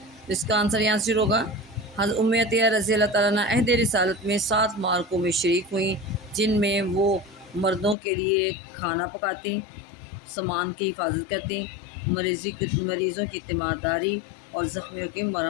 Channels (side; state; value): right; drops out; at 8.0 s